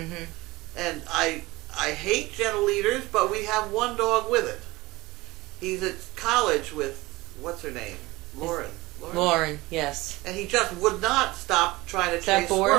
And I hate gentle leaders, but we have one dog with it. He's at college with, what's her name? Lauren, yes. And he just would not stop trying to Is that chase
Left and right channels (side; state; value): left; quieter; 20.8 dB